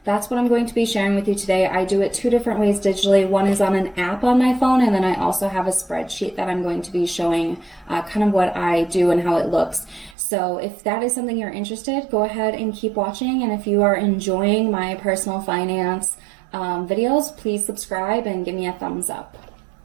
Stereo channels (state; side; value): drops out; left; at 10.2 s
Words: that's what I'm going to be sharing with you today. I do it two different ways digitally. One is on an app on my phone, and then I also have a spreadsheet that I'm going to be showing kind of what I do and how it looks. So if that is something you're interested, go ahead and keep watching. And if you are enjoying my personal finance videos, please subscribe and give me a thumbs up.